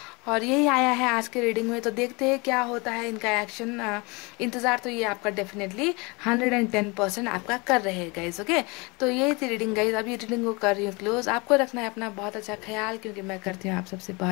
और यही आया है आज के रीडिंग में। तो देखते हैं क्या होता है इनका एक्शन। इंतज़ार तो ये आपका डेफिनेटली 110% आपका कर रहे हैं गाइज। ओके, तो यही थी रीडिंग गाइज। अभी रीडिंग को कर रही हूँ क्लोज। आपको रखना है अपना बहुत अच्छा ख्याल, क्योंकि मैं करती हूँ आप सबसे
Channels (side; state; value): right; quieter; 27.6 dB